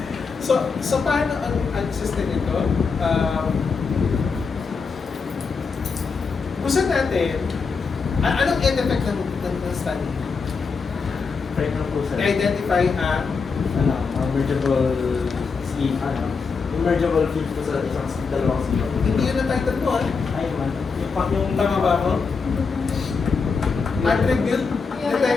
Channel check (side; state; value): right; quieter; 5.1 dB